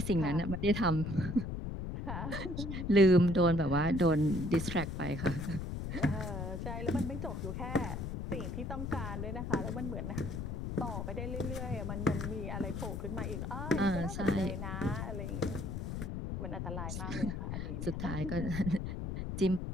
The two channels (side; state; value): left; noise; rumble, 4 dB below the sound